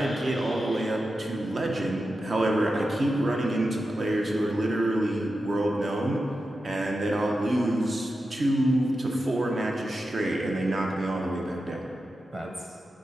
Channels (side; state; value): both; normal; correlation 0.90